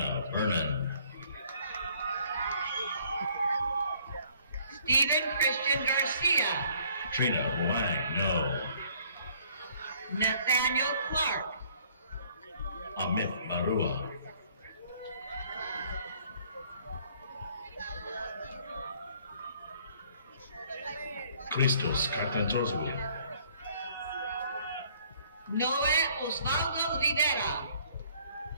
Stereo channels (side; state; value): both; inverted; correlation -0.60